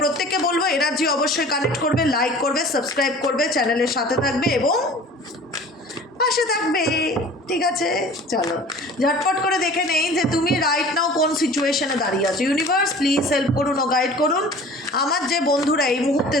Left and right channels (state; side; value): normal; both; correlation 0.44